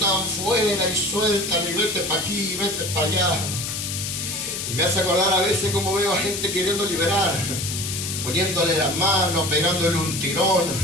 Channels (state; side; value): noise; left; hiss, 4 dB below the sound